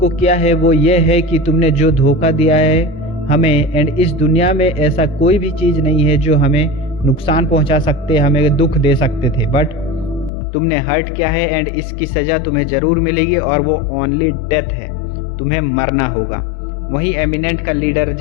क्या है वो ये है कि तुमने जो धोखा दिया है हमें, एंड इस दुनिया में ऐसा कोई भी चीज़ नहीं है जो हमें नुकसान पहुंचा सकते, हमें दुख दे सकते थे, बट तुमने हर्ट किया है एंड इसकी सज़ा तुम्हें ज़रूर मिलेगी और वो ओनली डेथ है, तुम्हें मरना होगा। वहीं एमिनेंट का लीडर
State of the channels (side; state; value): right; drops out; at 10.3 s